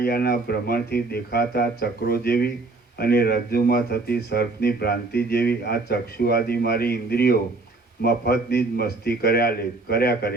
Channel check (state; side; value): quieter; left; 3.4 dB